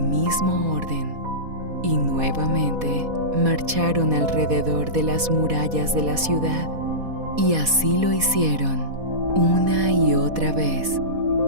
mismo orden, y nuevamente marcharon alrededor de las murallas de la ciudad, y así lo hicieron una y otra vez,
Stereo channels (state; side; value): late; left; 4.1 ms